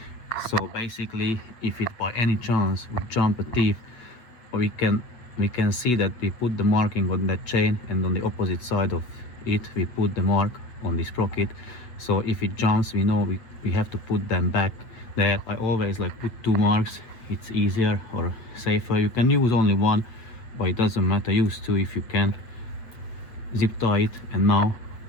So basically, if it by any chance would jump a teeth, we can see that we put the marking on that chain, and on the opposite side of it we put the mark on the sprocket. So if it jumps, we know we have to put them back there. I always like put 2 marks, it's easier or safer. You can use only 1, but it doesn't matter, use 2 if you can. Zip tie it, and now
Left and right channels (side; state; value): right; late; 8.2 ms